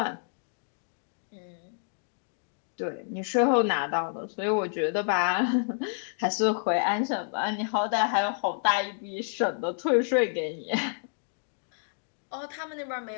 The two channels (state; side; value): silent; right; 58 dB below the other